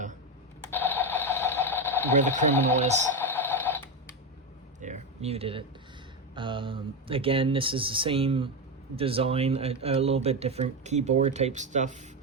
the criminal is. There, muted it. Again, this is the same design, a little bit different keyboard type stuff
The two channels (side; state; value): both; normal; correlation 0.12